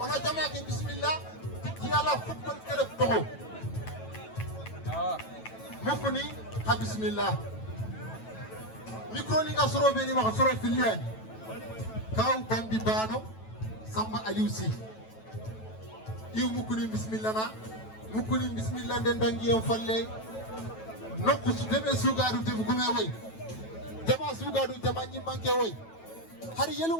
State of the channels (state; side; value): late; right; 9.1 ms